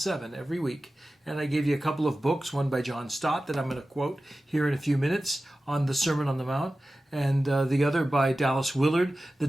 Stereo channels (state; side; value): normal; both; correlation 0.95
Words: every week. And I gave you a couple of books, one by John Stott that I'm going to quote here in a few minutes on the Sermon on the Mount, and the other by Dallas Willard, The